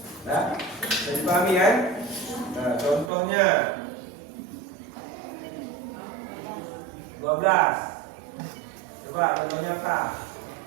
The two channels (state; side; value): drops out; left; at 3.1 s